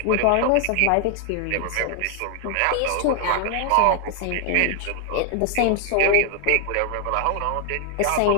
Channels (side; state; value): both; different; correlation 0.00